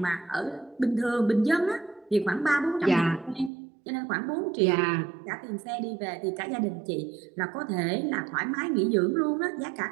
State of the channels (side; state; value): left; drops out; at 3.5 s